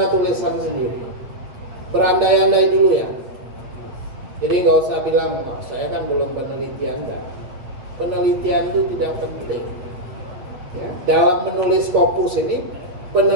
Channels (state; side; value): late; left; 8.2 ms